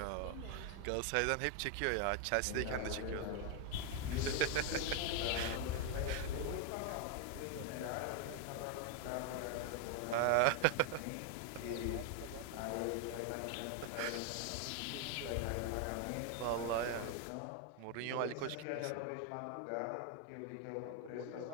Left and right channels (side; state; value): both; different; correlation 0.00